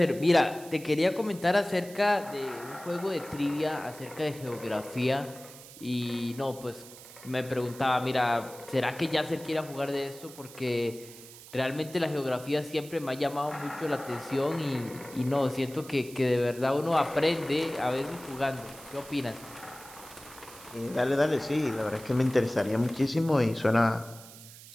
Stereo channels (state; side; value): noise; right; hiss, 18 dB below the sound